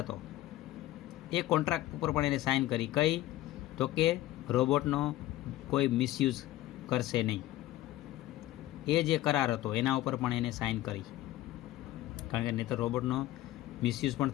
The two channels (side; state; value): right; quieter; 15.4 dB